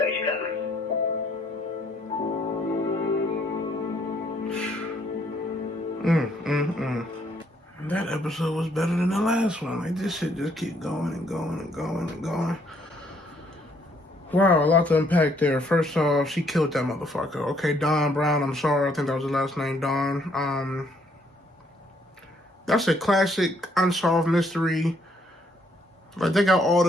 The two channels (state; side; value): normal; both; correlation 0.68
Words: coming. That episode was better than the last one. Like, this shit just keep going and going and going and going. Wow, a lot to unpack there. First off, she killed that motherfucker. Okay, Don Brown, I'm sorry. I think that was the last name, Don. That's a classic unsolved mystery. Like, they got all